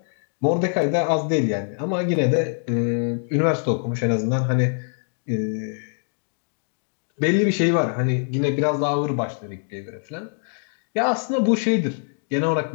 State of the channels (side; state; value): right; silent; 59 dB below the other